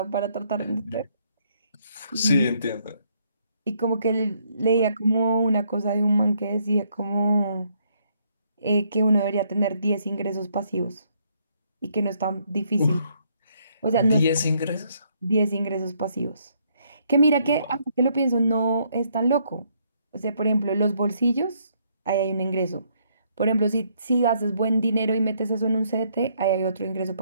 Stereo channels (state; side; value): inverted; both; correlation -0.70